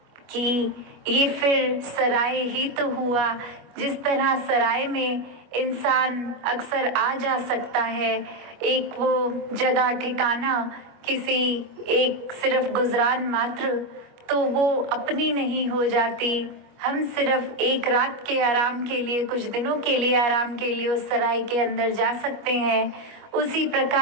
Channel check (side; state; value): left; late; 25 ms